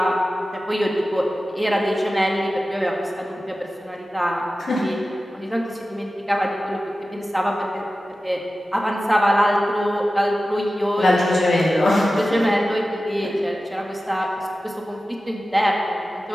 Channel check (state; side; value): normal; both; correlation 0.94